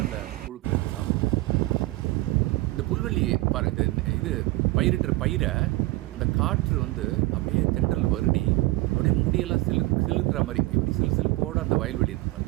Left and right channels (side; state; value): left; quieter; 20.8 dB